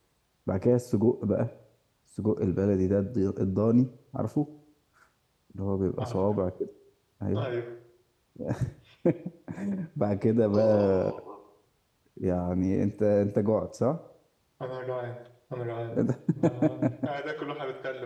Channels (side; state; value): both; identical; correlation 1.00